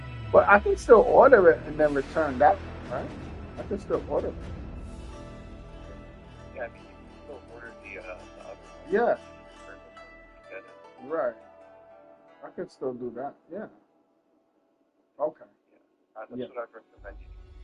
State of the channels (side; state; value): both; identical; correlation 1.00